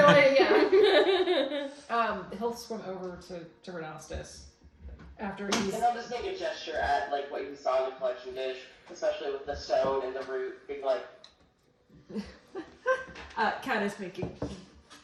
He'll swim over to Renastus after he's. And I'll just make a gesture at like what you saw in the collection dish, especially with the stone and the root being like. Kat is making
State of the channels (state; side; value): identical; both; correlation 1.00